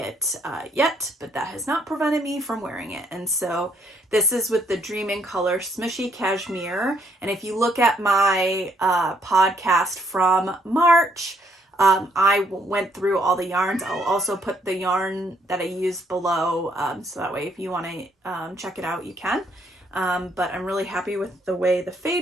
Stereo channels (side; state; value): both; normal; correlation 0.70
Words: yet, but that has not prevented me from wearing it. And so this is with the Dream in Color Smooshy Cashmere. And if you look at my podcast from March, I went through all the yarns. I'll also put the yarn that I used below, so that way if you want to check it out, you can. But I'm really happy with the way the